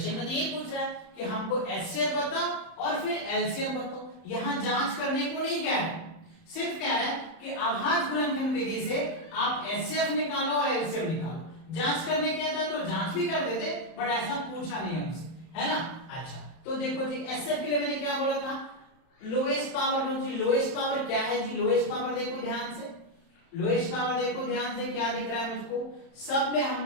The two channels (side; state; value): right; late; 31 ms